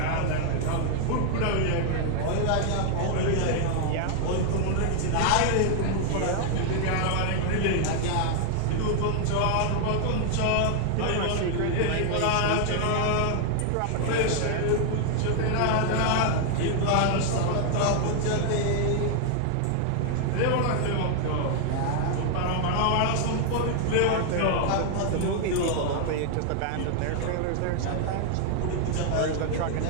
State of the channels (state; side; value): different; both; correlation 0.00